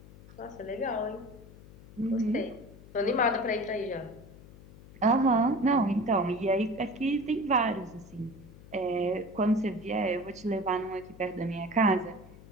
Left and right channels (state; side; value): noise; left; hum, 20 dB below the sound